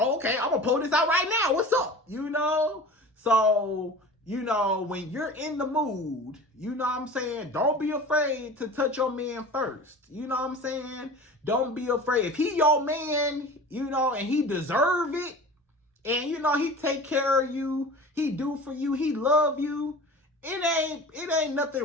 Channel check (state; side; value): normal; both; correlation 0.38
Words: I'm gonna pull this out right now. What's up? You know? So, you know, when you're in the mood, you know what I'm saying? Don't be afraid to touch your man first. You know what I'm saying? Don't be afraid. If he your man, you know, and he deserve it, and you know, he take care of you, he do for you, he love you, it ain't nothing